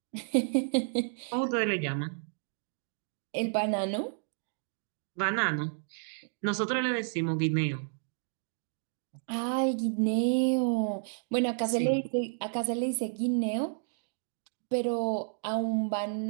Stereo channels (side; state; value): left; silent; digital silence